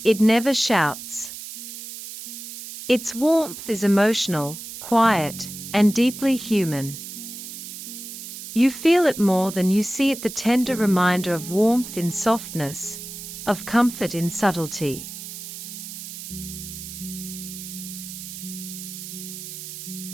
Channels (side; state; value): right; noise; hiss, 10 dB below the sound